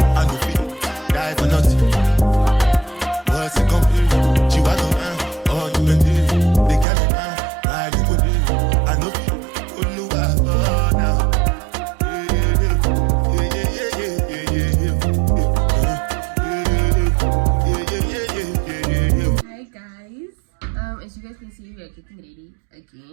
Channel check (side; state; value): left; drops out; at 6.9 s